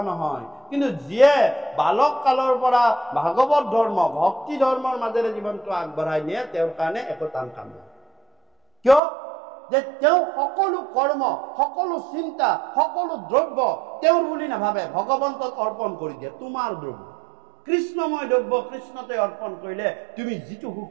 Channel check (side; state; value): left; drops out; at 9.0 s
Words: নহয় কিন্তু যিয়ে বালক কালৰ পৰা ভাগৱত ধৰ্ম ভক্তি ধৰ্মৰ মাজেৰে জীৱনটো আগবঢ়াই নিয়ে তেওঁৰ কাৰণে একো টান কাম নহয় কিয় যে তেওঁ সকলো কৰ্ম সকলো চিন্তা সকলো দ্ৰব্য তেওঁৰ বুলি নাভাবে ভগৱন্তক অৰ্পণ কৰি দিয়ে তোমাৰ দ্ৰব্য কৃষ্ণময় দ্ৰব্য কৃষ্ণতে অৰ্পণ কৰিলে তুমি যিটো সুখ